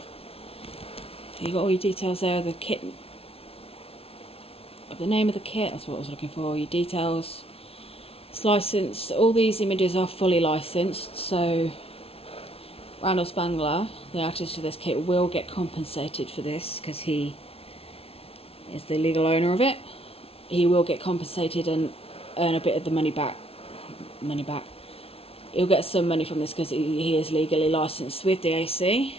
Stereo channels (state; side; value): late; right; 0.28 ms